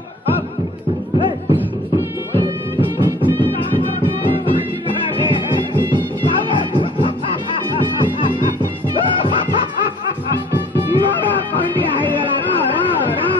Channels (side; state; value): both; normal; correlation 0.51